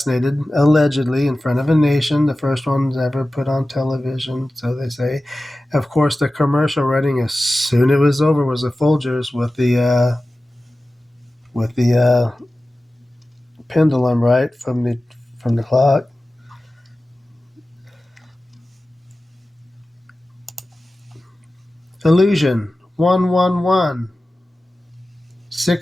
allegedly, in front of a nation, the first one ever put on television, so they say. Of course, the commercial running as soon as it was over was the Folgers with the pendulum, right, from the clock. Illusion, 111,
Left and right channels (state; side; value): normal; both; correlation 0.95